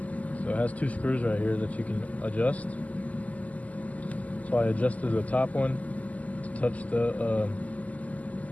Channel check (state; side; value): late; right; 0.074 ms